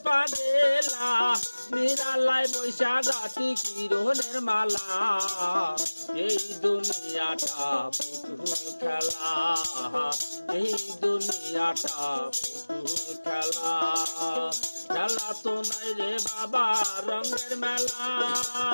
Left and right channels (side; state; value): both; inverted; correlation -1.00